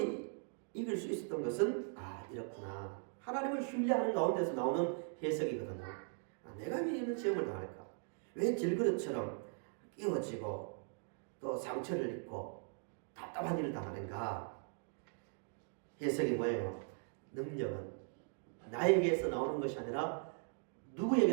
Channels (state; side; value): silent; left; 51 dB below the other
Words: 이길 수 있었던 것은 이렇구나. 하나님을 신뢰하는 가운데서 나오는 해석이거든요. 내가 왜 이런 시험을 당할까? 왜 질그릇처럼 끼워지고 또 상처를 입고 답답한 일을 당하는가? 해석이 뭐예요? 능력은 나에게서 나오는 것이 아니라